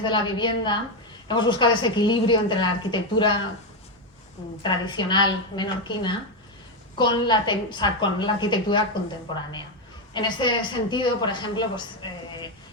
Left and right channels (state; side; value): normal; both; correlation 0.08